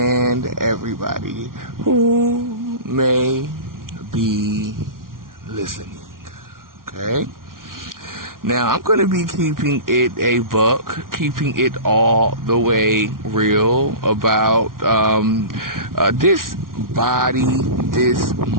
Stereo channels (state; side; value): late; left; 0.92 ms